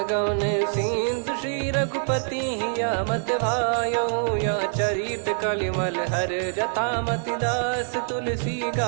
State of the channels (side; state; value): left; silent; digital silence